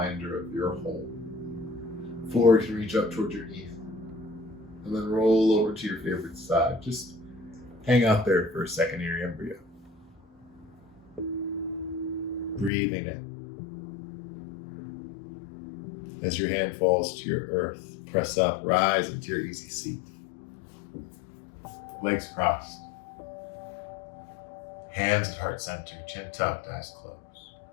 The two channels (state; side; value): drops out; right; at 12.7 s